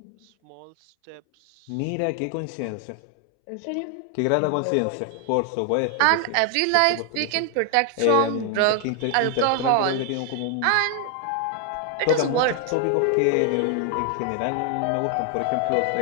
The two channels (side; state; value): both; different; correlation 0.00